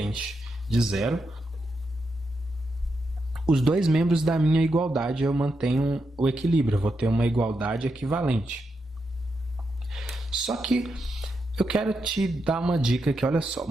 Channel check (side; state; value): both; normal; correlation 0.84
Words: de zero os dois membros da minha igualdade. Eu mantenho o equilíbrio, eu vou ter uma igualdade equivalente. Só que eu quero te dar uma dica aqui, olha só.